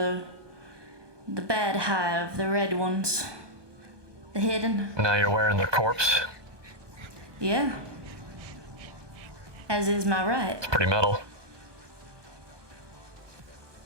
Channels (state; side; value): late; left; 1.2 ms